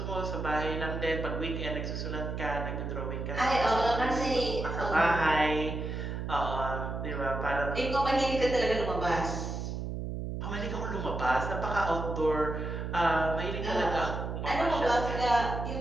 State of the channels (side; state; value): right; noise; hum, 4 dB below the sound